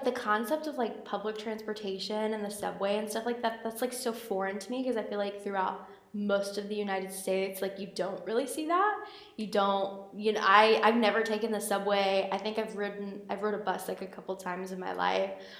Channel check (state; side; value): identical; both; correlation 1.00